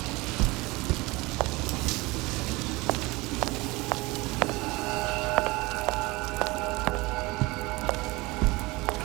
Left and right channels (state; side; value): quieter; left; 22.8 dB